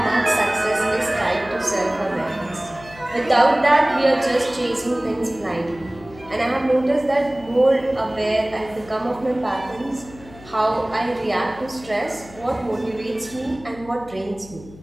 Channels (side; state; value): left; noise; hum, 20 dB below the sound